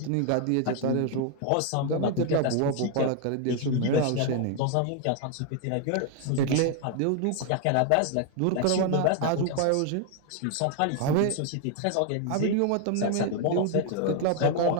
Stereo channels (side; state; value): both; different; correlation 0.00